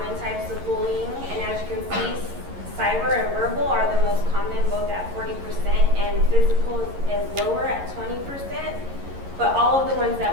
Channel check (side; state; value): left; late; 11 ms